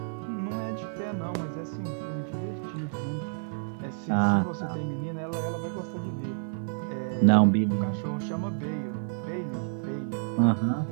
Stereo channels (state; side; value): silent; left; digital silence